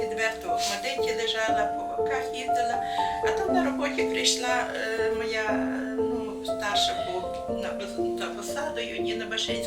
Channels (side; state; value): both; identical; correlation 1.00